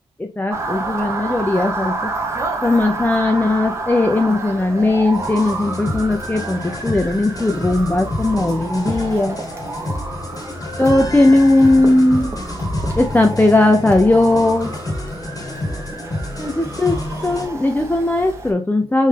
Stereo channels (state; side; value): normal; both; correlation 0.89